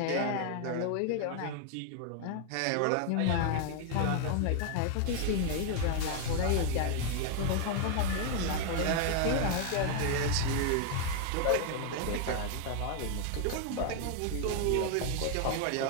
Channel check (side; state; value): both; different; correlation 0.00